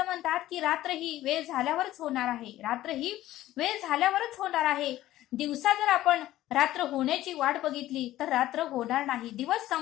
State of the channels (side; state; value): right; quieter; 14.8 dB